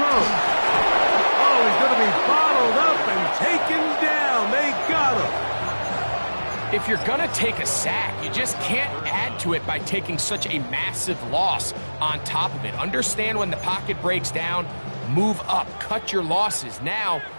Oh, he's going to be bottled up and taken down. They got him. If you're going to take a sack, you just can't add to it by taking such a massive loss on top of it. Understand when the pocket breaks down, move up, cut your losses. Now,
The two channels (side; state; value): both; inverted; correlation -1.00